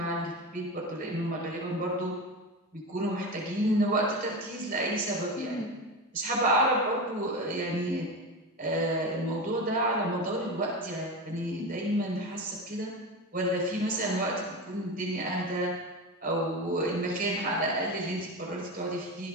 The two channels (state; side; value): normal; both; correlation 0.22